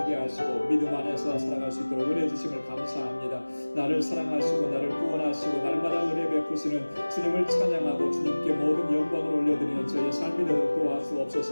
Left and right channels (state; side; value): inverted; both; correlation -1.00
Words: 하시고 믿음 안에서 살아갈 수 있도록 은혜 주심을 감사합니다. 감사합니다. 나를 사랑하시고 나를 구원하시고 날마다 은혜 베푸시는 주님을 찬양하고 주님께 모든 영광을 올려드리는 저희의 삶이 되도록